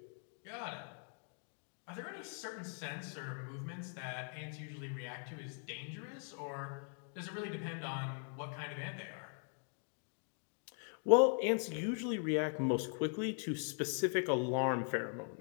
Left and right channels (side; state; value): right; silent; 51 dB below the other